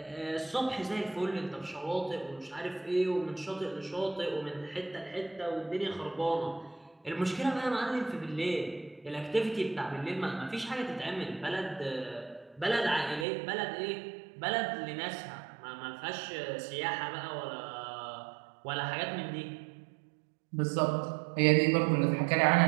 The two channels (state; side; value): drops out; left; at 13.2 s